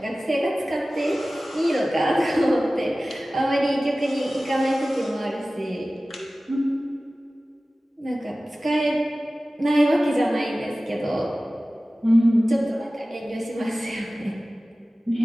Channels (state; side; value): normal; both; correlation 0.97